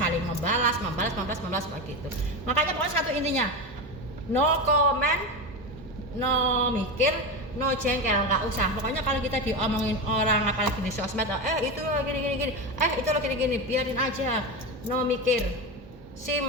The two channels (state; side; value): normal; both; correlation 0.18